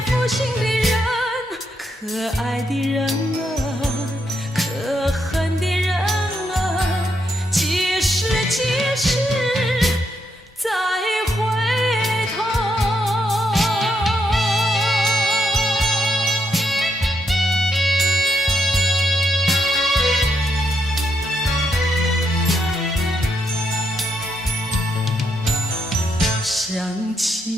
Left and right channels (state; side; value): normal; both; correlation 0.79